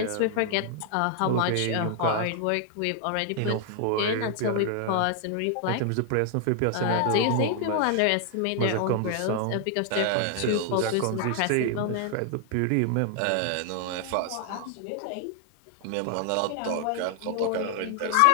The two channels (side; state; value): both; different; correlation 0.00